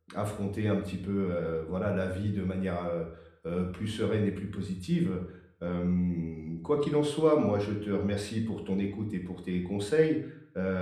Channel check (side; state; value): both; identical; correlation 1.00